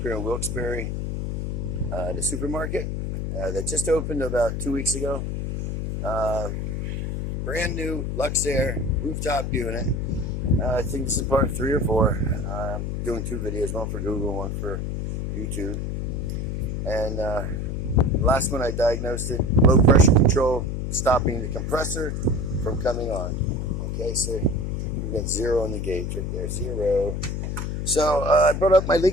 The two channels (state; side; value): noise; left; hum, 3 dB below the sound